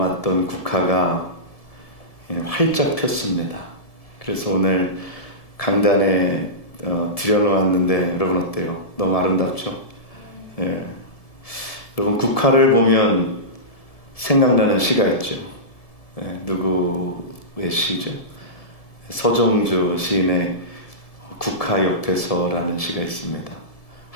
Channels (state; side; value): late; right; 1.7 ms